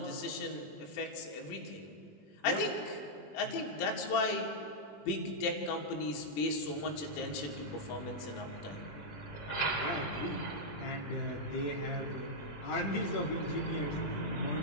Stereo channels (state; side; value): late; right; 21 ms